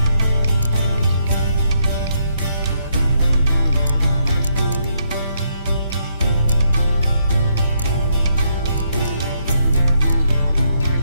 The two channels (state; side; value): inverted; both; correlation -0.74